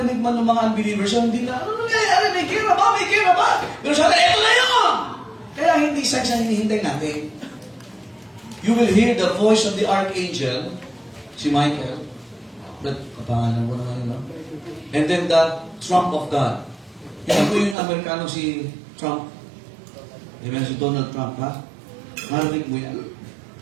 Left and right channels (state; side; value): drops out; left; at 17.8 s